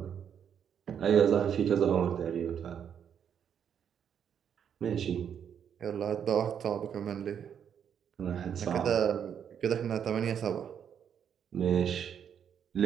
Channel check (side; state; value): left; quieter; 8.3 dB